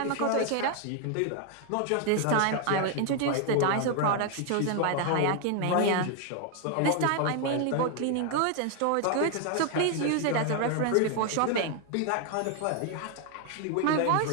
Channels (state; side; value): different; both; correlation 0.00